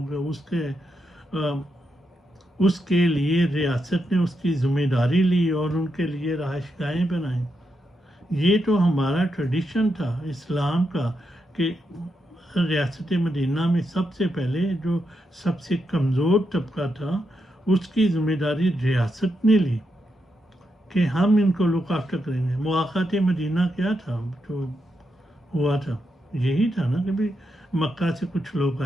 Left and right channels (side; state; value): both; normal; correlation 0.83